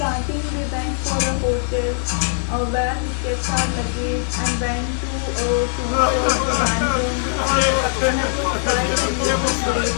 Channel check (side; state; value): right; silent; digital silence